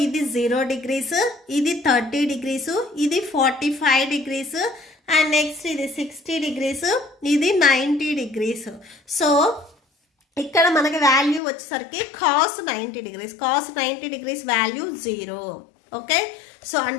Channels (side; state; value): right; drops out; at 11.4 s